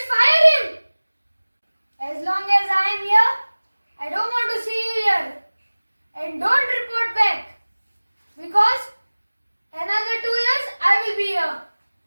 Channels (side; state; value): both; inverted; correlation -1.00